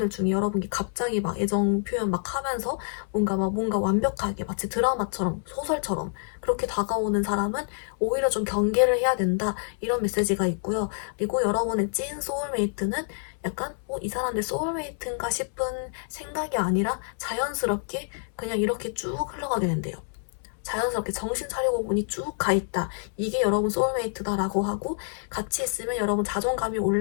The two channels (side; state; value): right; silent; 60 dB below the other